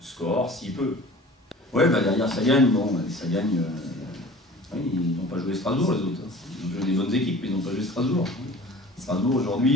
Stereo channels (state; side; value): normal; both; correlation 0.43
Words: score s'il peut. Ouais, derrière ça gagne. Bon, ça gagne. Oui, ils n'ont pas joué Strasbourg, les autres. Ils ont joué des bonnes équipes, mais ils n'ont pas joué Strasbourg. Strasbourg,